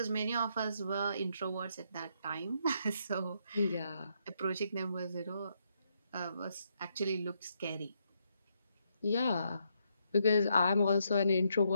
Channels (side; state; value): both; inverted; correlation -0.77